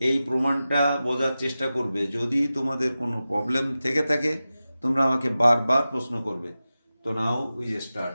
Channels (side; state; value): both; inverted; correlation -0.94